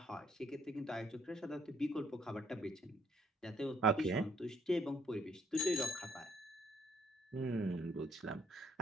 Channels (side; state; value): both; normal; correlation 0.64